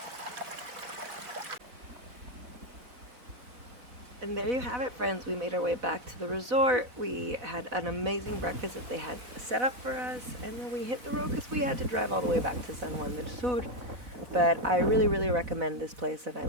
And there you have it, friends. We made our way back to the resort. We had an amazing breakfast that they had set up for us, and then we hit the road because we had to drive all the way back to San Juan del Sur. But I really, really recommend this place, and I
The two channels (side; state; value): left; late; 4.0 ms